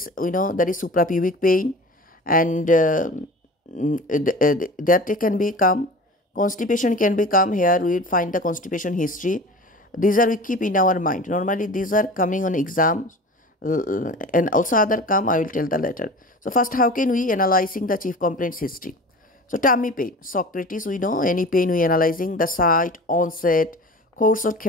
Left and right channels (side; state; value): both; normal; correlation 0.37